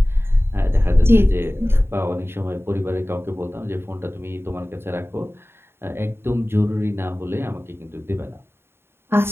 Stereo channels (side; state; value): left; late; 0.11 ms